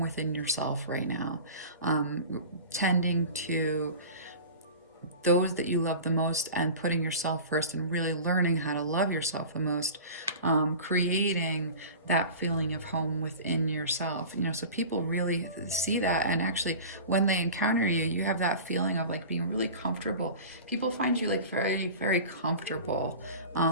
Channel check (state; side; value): inverted; both; correlation -0.36